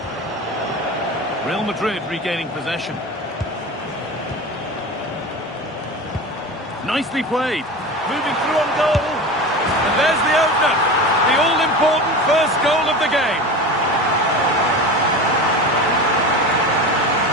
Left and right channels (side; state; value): both; normal; correlation 0.30